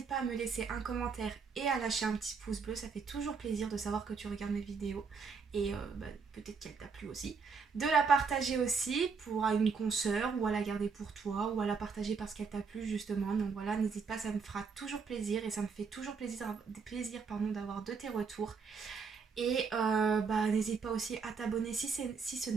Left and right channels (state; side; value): quieter; left; 5.4 dB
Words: pas à me laisser un commentaire et à lâcher un petit pouce bleu. Ça fait toujours plaisir de savoir que tu regardes mes vidéos. Et peut-être qu'elle t'a plu aussi. De la partager aussi pour une consoeur ou à la garder pour toi ou à la partager parce qu'elle t'a plu justement. Donc voilà, n'hésite pas, ça me fera toujours plaisir et ça me fait toujours plaisir d'avoir de tes retours. Et n'hésite pas aussi à t'abonner si ce